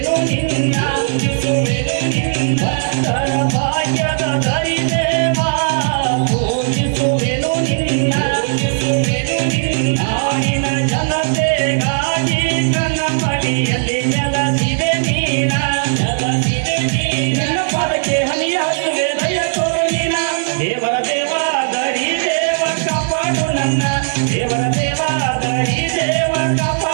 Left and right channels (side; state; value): left; silent; digital silence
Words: ನಿನ್ನ ಭಕ್ತರ ಭಾಗ್ಯದ ದರಿ ದೇವ ಪೂಜಿಸುವೆನು ನಿನ್ನ ನಾಡಿನ ಜನತೆಗಾಗಿ ಕನ್ನ ಮಡಿಯಲ್ಲಿ ನೆಲಸಿದೆ ನೀನ ನಿನ್ನ ಪಾದಕ್ಕೆ ಹನಿಯ ಹಚ್ಚುವೆ ದಯ ತೋರು ನೀನ ದೇವರ ದೇವ ದರಿ ದೇವ ಕಾಪಾಡು ನನ್ನ ದೇವರ ದೇವ ದರಿ ದೇವ